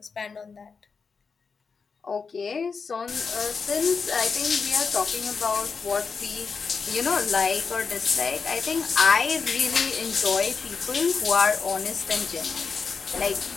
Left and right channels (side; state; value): right; quieter; 5.2 dB